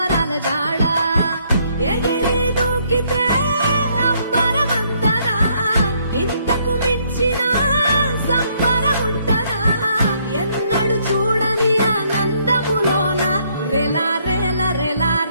జాడ ఎగిరి దూకితే అంబరమందరా ఇంతకు మించిన సంబరముంటదా ఎన్నడు చూడని ఆనందములోన రెలా రేల రెలా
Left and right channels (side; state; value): both; inverted; correlation -0.69